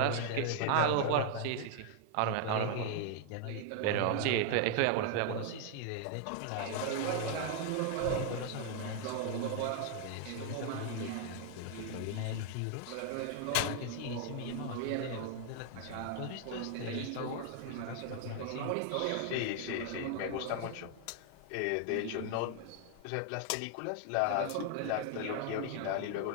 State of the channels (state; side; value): different; both; correlation 0.00